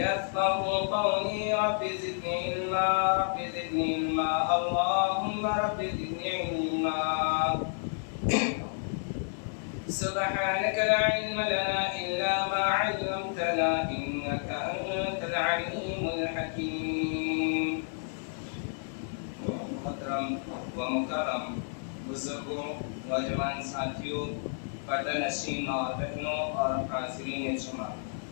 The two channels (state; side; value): silent; right; digital silence